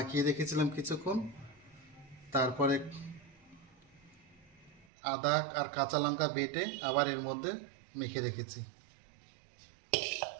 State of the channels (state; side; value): drops out; left; at 4.9 s